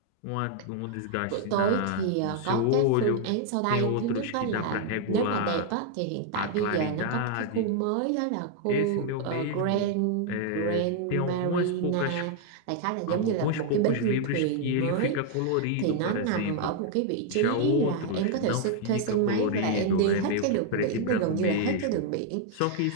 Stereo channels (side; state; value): both; different; correlation 0.00